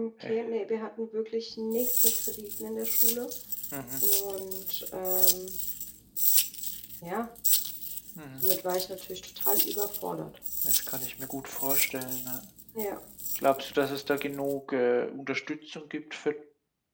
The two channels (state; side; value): identical; both; correlation 1.00